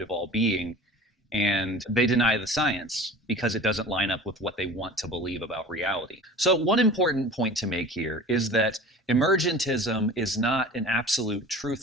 of all being, and they deny the science because it doesn't line up with what they want to believe about reality. So one important point to make here is that emergentism is not an absolute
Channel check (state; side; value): normal; both; correlation 0.40